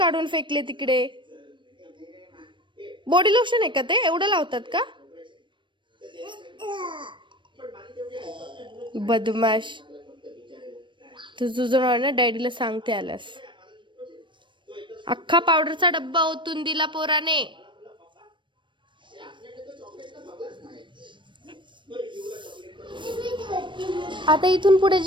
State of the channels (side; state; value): left; late; 0.23 ms